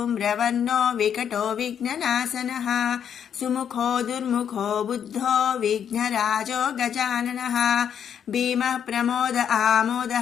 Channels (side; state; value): right; quieter; 8.5 dB